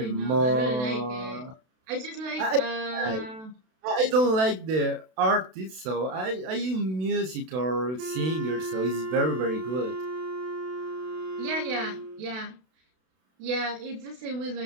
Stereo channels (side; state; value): left; late; 32 ms